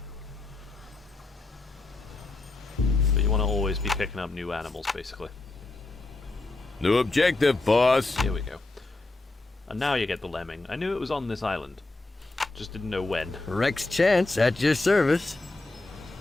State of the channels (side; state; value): right; quieter; 3.1 dB